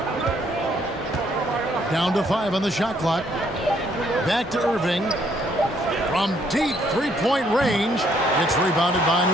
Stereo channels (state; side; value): normal; both; correlation 0.68